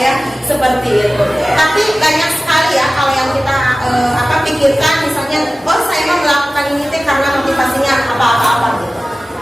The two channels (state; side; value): normal; both; correlation 0.96